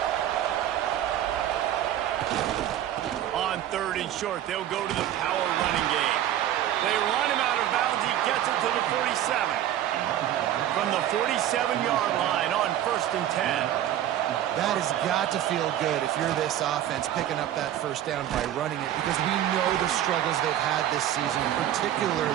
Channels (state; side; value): quieter; left; 11.8 dB